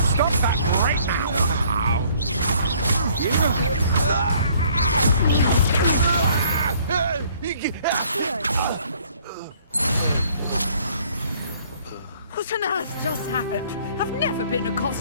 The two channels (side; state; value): both; inverted; correlation -0.60